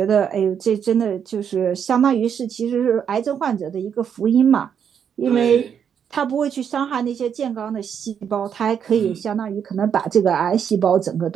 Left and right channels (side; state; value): left; quieter; 7.9 dB